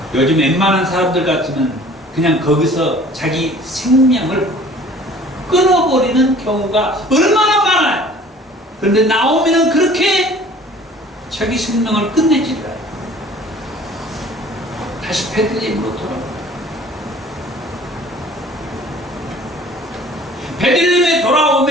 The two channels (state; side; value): normal; both; correlation 0.49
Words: 요즘 웬만한 사람들 같으면 그냥 거기서 자기 생명을 끊어버리는 경우가 얼마나 많아요. 그런데 나오미는 그렇게 자기 생명을 끝내지 않아요. 다시 베들레헴으로 돌아옵니다. 베들레헴에